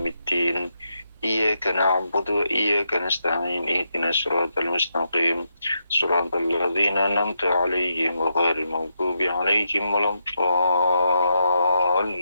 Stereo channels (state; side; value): inverted; both; correlation -0.82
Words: Iyyaka na'budu wa iyyaka nasta'in ihdinas siratal mustaqim siratal ladzina an'amta 'alaihim ghairil maghdubi 'alaihim